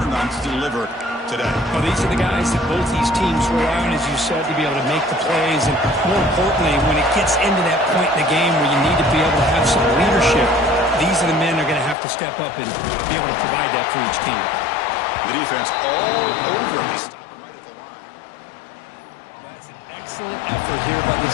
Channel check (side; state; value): right; drops out; at 12.0 s